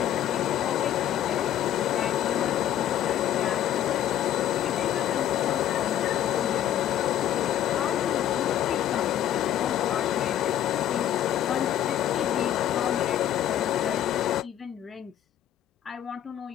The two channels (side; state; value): right; quieter; 11.4 dB